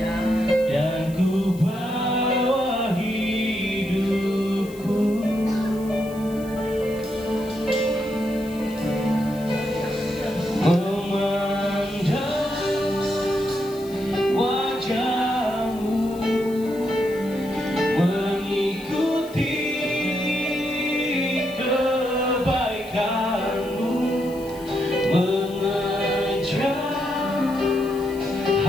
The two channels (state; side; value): noise; left; hiss, 21 dB below the sound